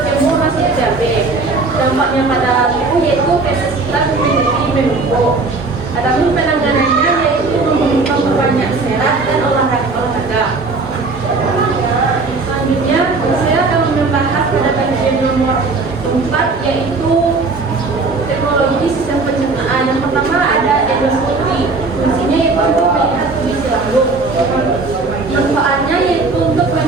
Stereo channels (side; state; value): left; quieter; 3.7 dB